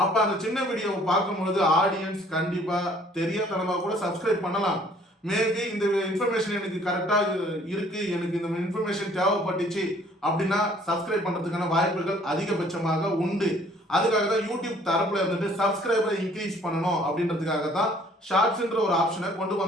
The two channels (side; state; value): both; normal; correlation 0.58